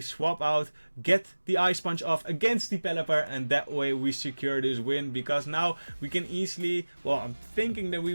out, get the Ice Punch off against the Pelipper, and that way we secure this win, because now we can easily, well, I'm thinking that we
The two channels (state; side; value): inverted; both; correlation -1.00